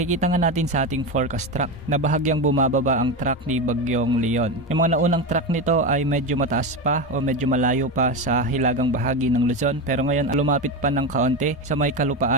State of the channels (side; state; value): both; normal; correlation 0.17